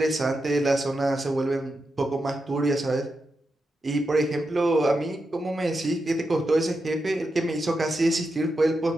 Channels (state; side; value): normal; both; correlation 0.88